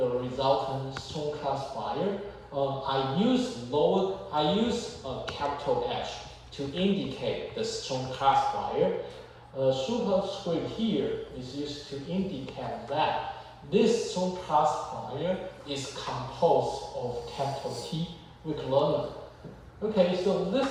resultant strong classifier. I use capital H to indicate the strong classifier. Superscript here is used to indicate that this strong classifier is composed of capital T weak learner. Okay, so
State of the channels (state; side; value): identical; both; correlation 1.00